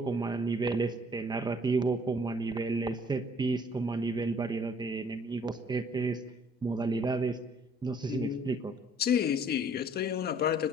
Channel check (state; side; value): normal; both; correlation 0.59